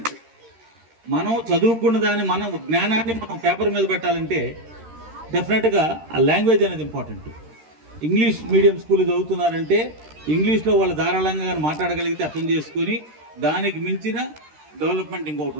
మనం చదువుకున్న దాన్ని మనం జ్ఞానాన్ని మనం పేపర్ మీద పెట్టాలంటే డెఫినెట్గా ఆ లాంగ్వేజ్ అనేది ఇంపార్టెంట్. ఇంగ్లీష్ మీడియం స్కూల్ చదువుతున్నారంటే ఇంగ్లీష్లో వాళ్ళు ధారాళంగా మాట్లాడగలిగితే అర్థం చేసుకొని దానికి మించిన డెవలప్మెంట్ ఇంకొకటి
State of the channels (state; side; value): late; left; 13 ms